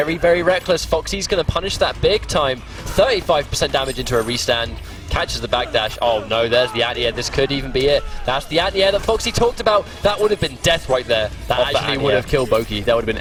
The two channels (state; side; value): identical; both; correlation 1.00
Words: very reckless. Foxy's going to punish that big time. 35% damage into a restand. Catches the backdash. Oh no, there's the anti-air. This could even be it. That's the anti-air that Foxy talked about. That would have been death right there. That actually would have killed Boki. That would have